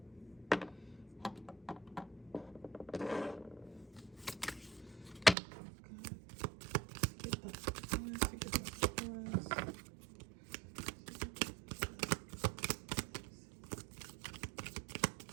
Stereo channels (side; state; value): left; drops out; at 5.4 s